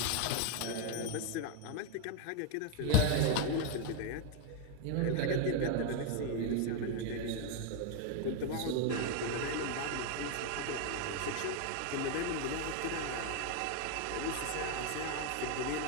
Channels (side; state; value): both; different; correlation 0.01